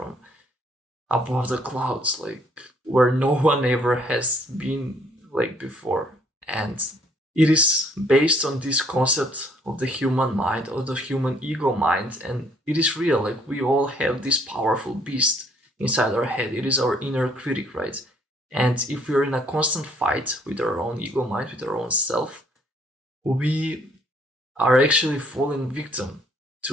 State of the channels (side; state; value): both; normal; correlation 0.63